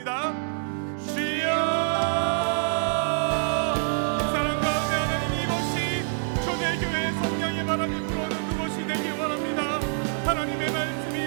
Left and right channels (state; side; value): silent; left; digital silence